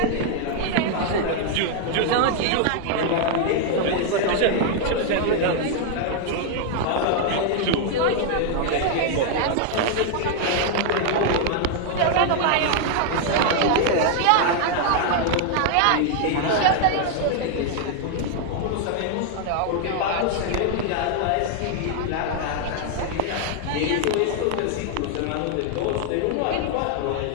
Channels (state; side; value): different; both; correlation 0.00